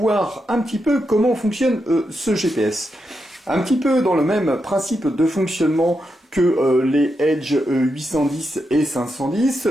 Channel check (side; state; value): both; normal; correlation 0.85